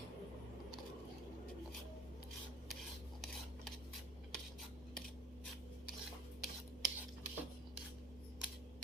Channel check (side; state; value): both; normal; correlation 0.52